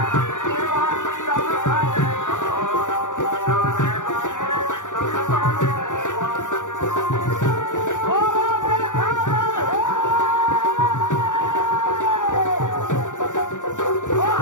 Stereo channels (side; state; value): right; late; 0.86 ms